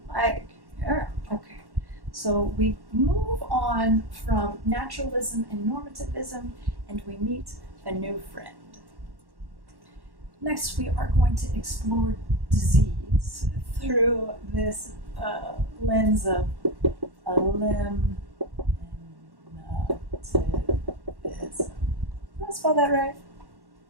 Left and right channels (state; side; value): late; left; 1.1 ms